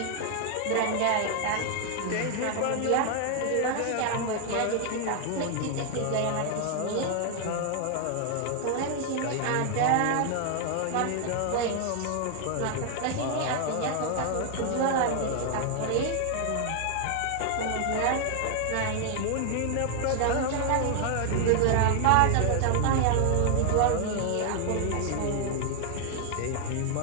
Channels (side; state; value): both; different; correlation 0.00